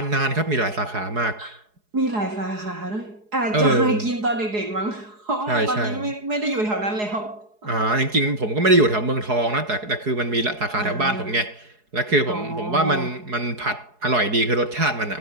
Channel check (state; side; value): late; left; 4.8 ms